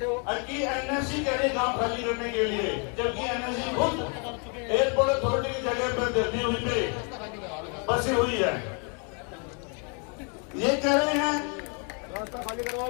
कि एनएससी कह रहे गाँव खाली करने के लिए, जबकि एनएससी खुद एयरपोर्ट अथॉरिटी की जगह पर दिल्ली हुई पे बसी हुई है। ये कह रहे हैं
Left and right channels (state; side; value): quieter; right; 37.6 dB